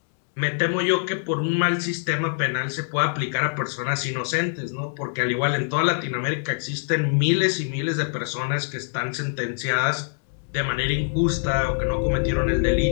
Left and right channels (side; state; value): right; silent; digital silence